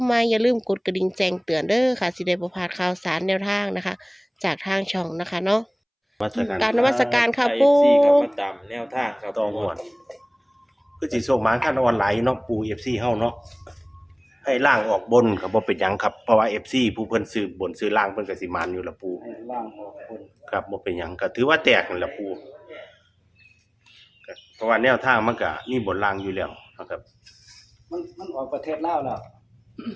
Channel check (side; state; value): both; identical; correlation 1.00